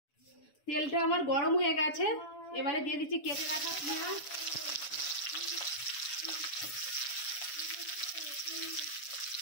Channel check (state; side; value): late; right; 7.1 ms